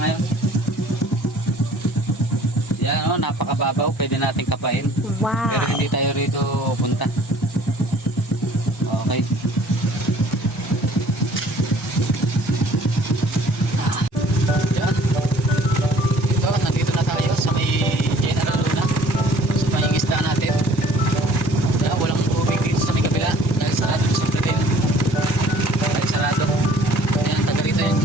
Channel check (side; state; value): both; normal; correlation 0.54